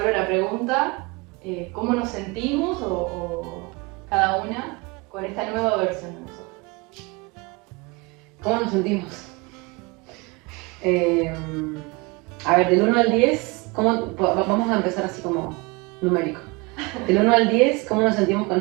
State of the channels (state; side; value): quieter; left; 26.6 dB